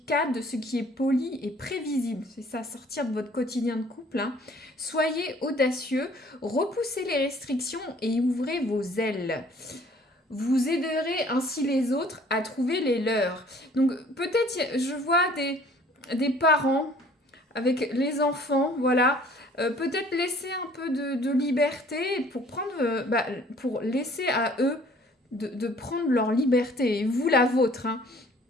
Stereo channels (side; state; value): both; normal; correlation 0.55